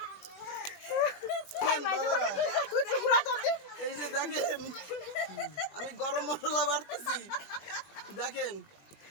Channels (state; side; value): late; right; 20 ms